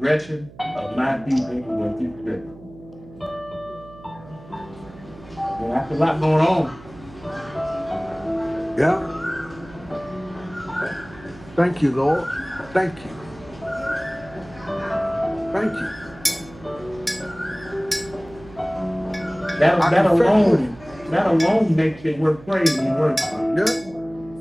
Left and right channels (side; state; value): right; noise; hum, 20 dB below the sound